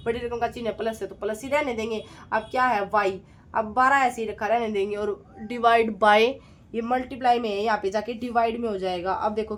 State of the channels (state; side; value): identical; both; correlation 1.00